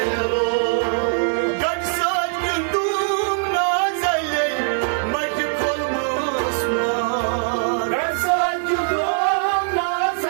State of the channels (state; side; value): silent; left; 61 dB below the other